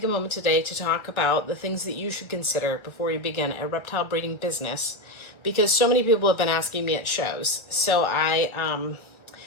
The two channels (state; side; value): late; right; 1.6 ms